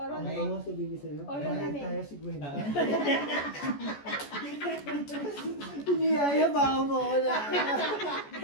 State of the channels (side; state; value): right; late; 14 ms